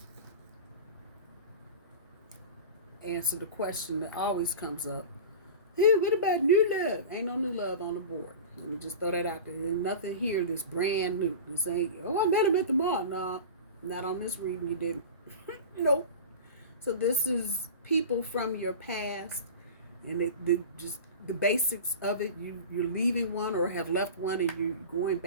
Answer the question that always comes up. Hey, what about new love? Ain't no new love on the board. Let me just throw that out there. There's nothing here that's brand new. This ain't, I met him at the mall. Nah, not on this reading you didn't. So this is people from your past, and just the basics of it. You're leaving one or have left one, and you're going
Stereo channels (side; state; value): both; inverted; correlation -0.33